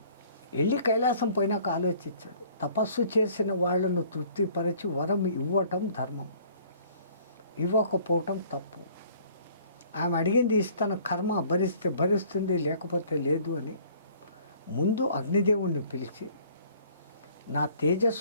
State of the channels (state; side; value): inverted; both; correlation -0.55